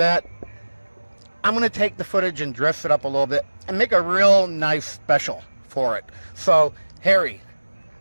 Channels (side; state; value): both; inverted; correlation -1.00